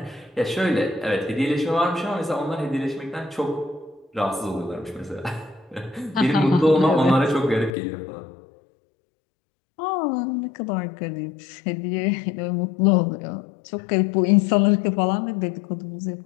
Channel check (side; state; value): right; drops out; at 7.8 s